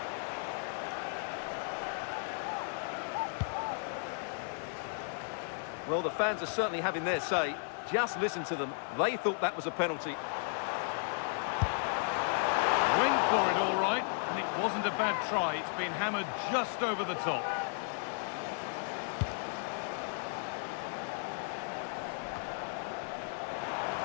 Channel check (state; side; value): silent; right; 55 dB below the other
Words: Well, the fans are certainly having their say. Just listen to them. They thought that was a penalty. Went for it all right, and it wasn't a bad try. It's been hammered just over the top.